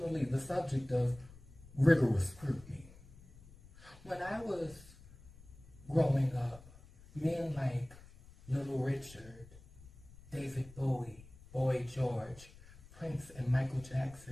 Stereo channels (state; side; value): noise; left; rumble, 20 dB below the sound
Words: the subject of rigorous scrutiny. When I was growing up, men like Little Richard, David Bowie, Boy George, Prince, and Michael